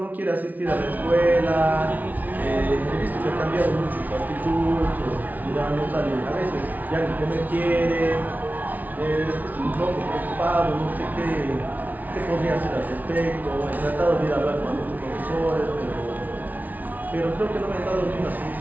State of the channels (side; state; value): left; late; 0.078 ms